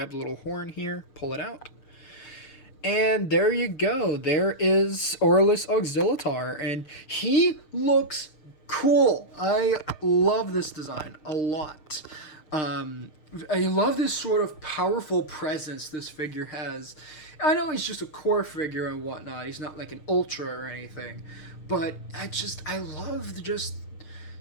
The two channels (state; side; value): late; right; 6.5 ms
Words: the little horn here, pull it out. And there you go. There is Aurelus Auxilitar, and he looks cool. I love this design a lot. I love this sort of powerful presence this figure has. I know he's just a core figure and whatnot. He's not like an ultra or anything, but I love just